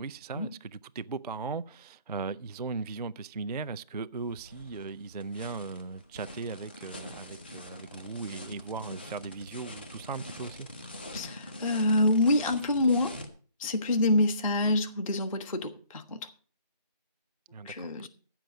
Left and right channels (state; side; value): inverted; both; correlation -0.57